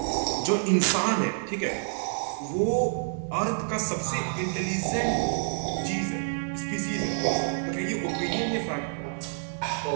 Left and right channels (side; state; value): left; silent; digital silence